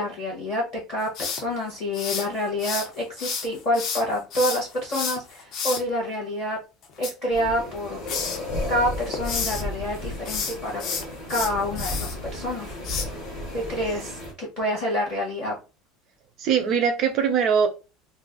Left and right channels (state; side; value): normal; both; correlation 0.36